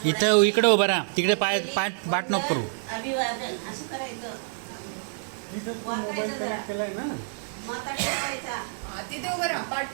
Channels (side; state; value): left; silent; digital silence